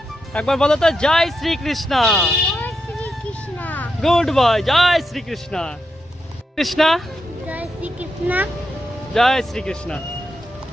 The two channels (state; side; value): normal; both; correlation 0.85